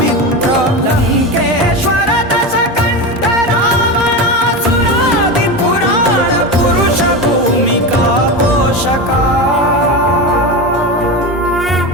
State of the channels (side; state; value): both; normal; correlation 0.21